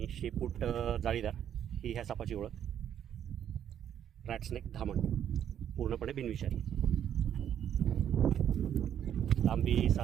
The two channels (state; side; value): quieter; left; 9.7 dB